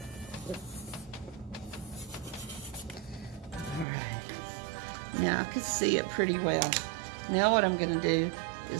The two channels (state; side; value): drops out; left; at 3.9 s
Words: Now I can see it pretty well. Now what I'm going to do